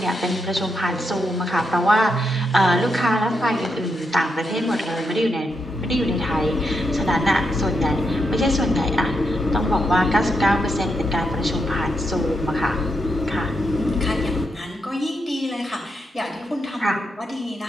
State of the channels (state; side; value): normal; both; correlation 0.82